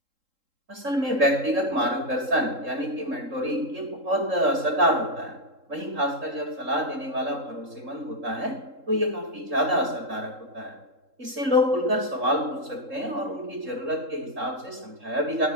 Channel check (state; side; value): late; left; 3.7 ms